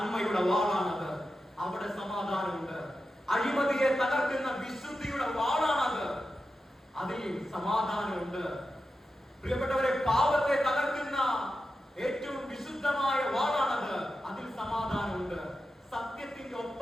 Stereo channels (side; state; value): both; normal; correlation 0.91